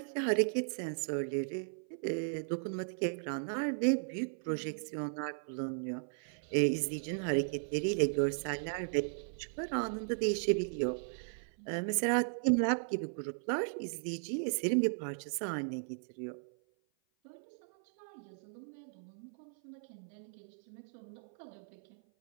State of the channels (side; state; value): left; silent; 54 dB below the other